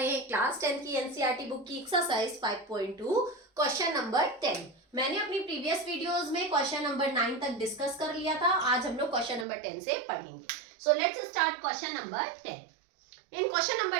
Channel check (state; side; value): drops out; left; at 9.5 s